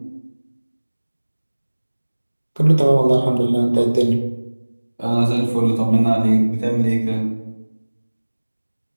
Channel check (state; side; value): inverted; both; correlation -1.00